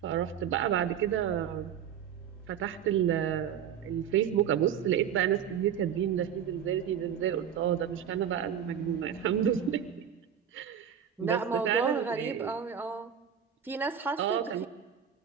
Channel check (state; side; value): quieter; left; 8.6 dB